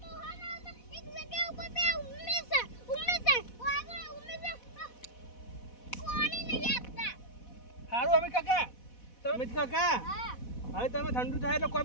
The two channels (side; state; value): right; late; 4.1 ms